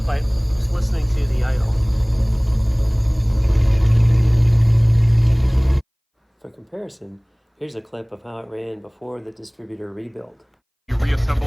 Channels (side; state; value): both; identical; correlation 1.00